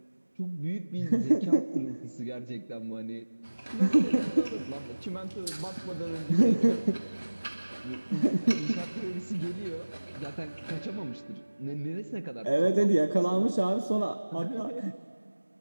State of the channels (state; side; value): inverted; both; correlation -1.00